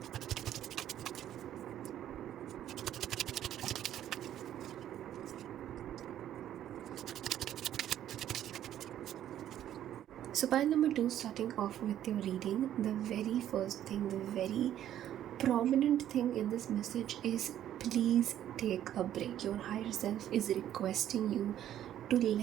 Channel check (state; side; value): quieter; left; 11.4 dB